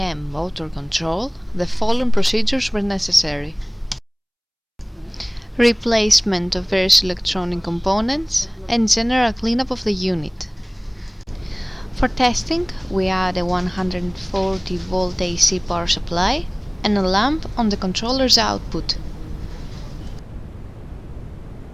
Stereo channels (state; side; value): identical; both; correlation 1.00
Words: motor control, the following procedures were necessary: replacement of various electronic components and general cleanup of the unit. For testing, we add a 140 volt AC power supply and a lamp on the controller's output.